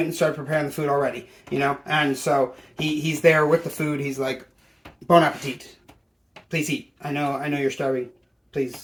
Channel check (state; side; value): identical; both; correlation 1.00